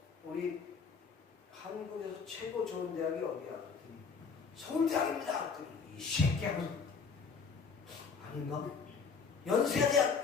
우리 한국에서 최고 좋은 대학이 어디야? 그랬더니 서울대학입니다. 그랬더니 이 새끼야. 아닌가?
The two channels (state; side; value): quieter; right; 5.4 dB